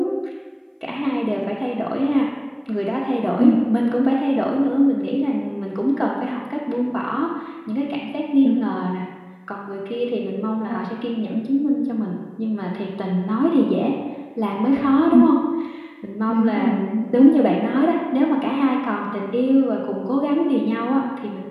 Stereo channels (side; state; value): both; identical; correlation 1.00